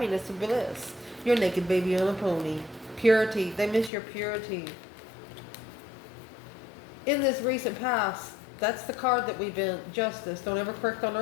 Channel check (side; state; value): right; drops out; at 3.9 s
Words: and bliss. Your naked baby on a pony. Purity. They miss your purity. In this recent past, that's the card that we've been. Justice. Don't ever correct on